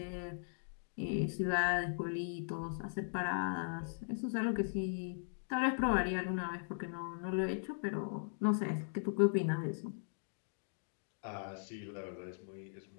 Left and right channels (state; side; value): silent; right; digital silence